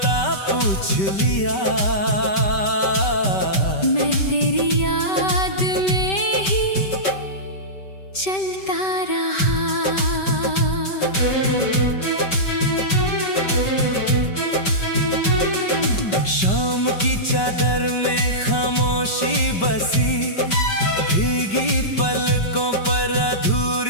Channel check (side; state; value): right; late; 5.2 ms